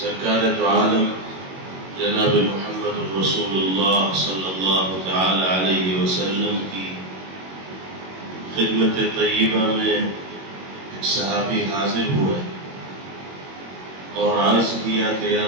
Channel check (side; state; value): left; late; 21 ms